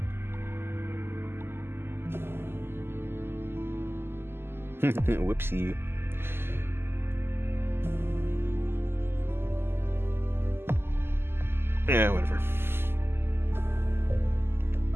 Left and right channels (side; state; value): left; late; 0.12 ms